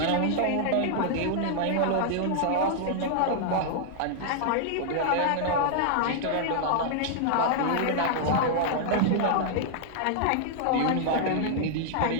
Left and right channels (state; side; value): different; both; correlation -0.01